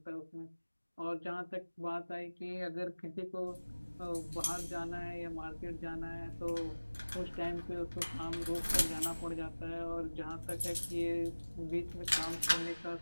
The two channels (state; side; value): inverted; both; correlation -1.00